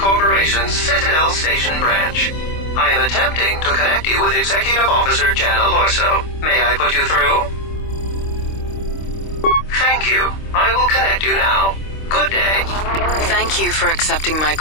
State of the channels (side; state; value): right; late; 26 ms